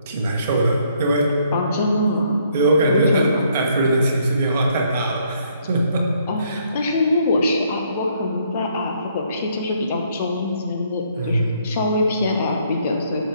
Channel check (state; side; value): inverted; both; correlation -0.68